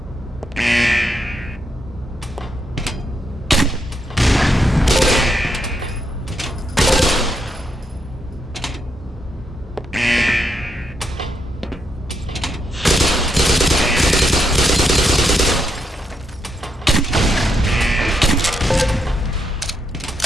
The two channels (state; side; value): normal; both; correlation 0.80